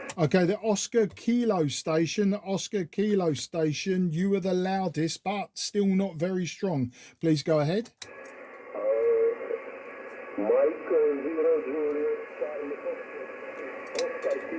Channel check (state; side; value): identical; both; correlation 1.00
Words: Okay, the Oscar Kilo station, you were the loudest, but still not very strong. Please go ahead. Mike 0, Juliet Charlie Foxtrot, Oscar